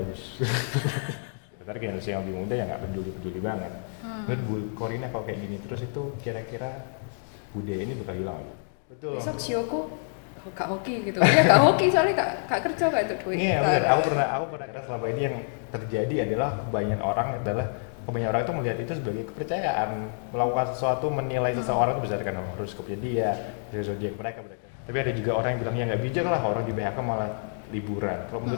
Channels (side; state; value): right; silent; digital silence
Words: Ntar generasi yang lebih muda ya nggak peduli-peduli banget. Menurut Bu Korina kalau kayak gini terus itu kira-kira budaya ini bakal hilang nggak? Betul. Besok sioku gak hoki gitu ya, gak hoki soalnya gak kerja gak itu duit. Iya benar. Aku pernah karena selama ini yang terjadi adalah kebanyakan orang itu melihat itu sebagai kepercayaan, melakukan sesuatu, menilai seseorang itu berdasarkan horoskopnya dia, dari zodiak mereka. Tapi ada juga orang yang bilang ya nggak bijak lah orang di PHK malah liburan. Kalau